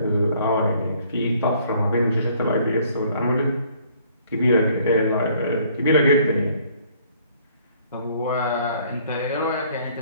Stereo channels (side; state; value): both; inverted; correlation -0.61